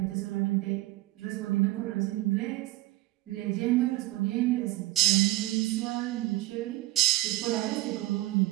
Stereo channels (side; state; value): left; quieter; 18.0 dB